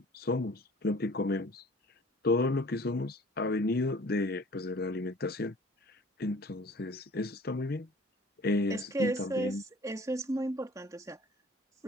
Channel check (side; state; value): both; normal; correlation 0.49